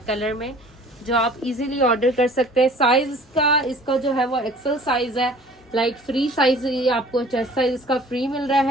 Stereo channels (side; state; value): both; normal; correlation 0.49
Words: कलर में जो आप इजीली ऑर्डर कर सकते हैं। साइज का इसका जो है वो एक्सेल साइज है, लाइक फ्री साइज ये आपको चेस्ट साइज इसका फ्री मिल रहा